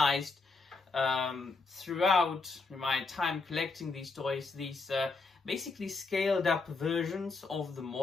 throughout my time collecting these toys, these basically scaled up versions of the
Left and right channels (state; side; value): quieter; right; 4.0 dB